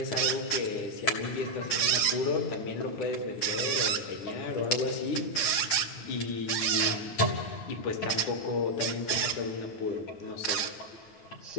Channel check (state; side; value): late; right; 8.9 ms